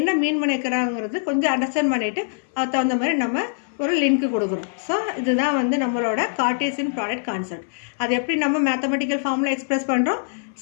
மீன் பண்ணிக்கிறாங்கிறது கொஞ்சம் அண்டர்ஸ்டாண்ட் பண்ணிவிட்டு அதுக்கு தகுந்த மாதிரி நம்ம ஒரு லிங்க் கொடுக்குறோம். ஸோ இதுதான் வந்து நம்மளோட கார்ட்டீசியன் ப்ராடக்ட் கான்செப்ட். அது எப்படி நம்ம மேத்தமெட்டிக்கல் ஃபார்மில் எக்ஸ்பிரஸ் பண்ணுறோம்.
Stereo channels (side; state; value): right; silent; 60 dB below the other